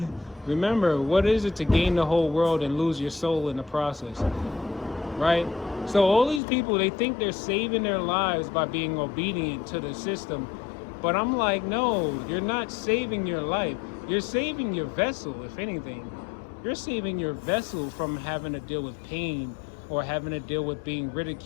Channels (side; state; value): right; drops out; at 6.4 s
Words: remember, what is it to gain the whole world and lose your soul in the process, right? So all these people, they think they're saving their lives by being obedient to the system. But I'm like, no, you're not saving your life. You're saving your vessel, if anything. You're saving your vessel from having to deal with pain or having to deal with being